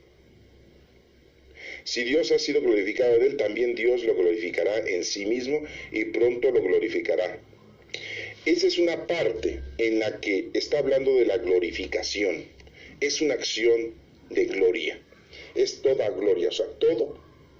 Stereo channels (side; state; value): both; identical; correlation 1.00